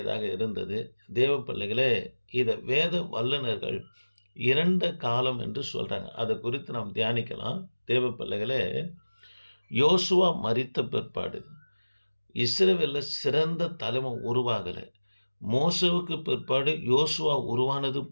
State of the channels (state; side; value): inverted; both; correlation -1.00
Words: இருந்தது. தேவ பிள்ளைகளே, இதை வேத வல்லுநர்கள் இரண்ட காலம் என்று சொல்கிறாங்க. அதை குறித்து நாம் தியானிக்கலாம். தேவ பிள்ளைகளே, யோசுவா மரித்த பிற்பாடு இஸ்ரவேலில் சிறந்த தலைமை உருவாகலை. மோசேவுக்கு பிற்பாடு யோசுவா உருவானது